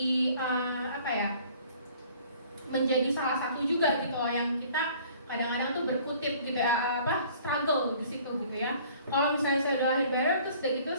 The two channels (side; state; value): both; inverted; correlation -0.53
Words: menjadi salah satu juga gitu loh yang kita kadang-kadang tuh berkutip gitu ya, struggle di situ gitu ya. Kalau misalnya saya udah lahir baru terus udah gitu